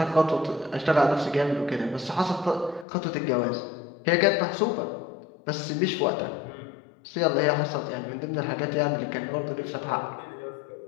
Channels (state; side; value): drops out; right; at 2.9 s